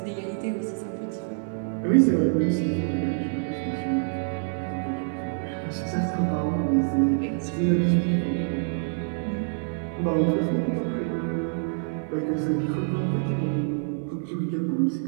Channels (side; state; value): left; silent; digital silence